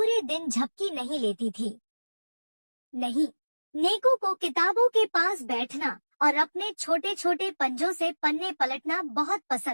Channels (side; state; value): both; inverted; correlation -1.00